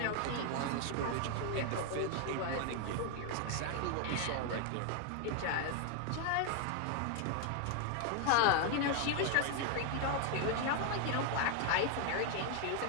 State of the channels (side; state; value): both; different; correlation 0.00